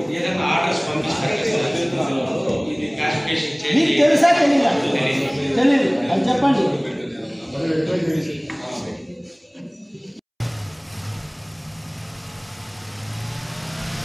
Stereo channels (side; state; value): both; identical; correlation 1.00